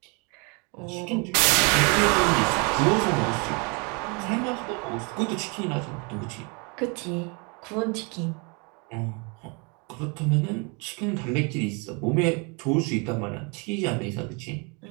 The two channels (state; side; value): quieter; left; 32.1 dB